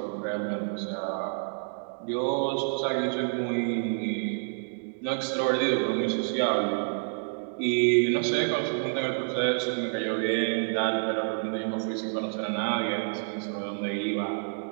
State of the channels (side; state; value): left; silent; digital silence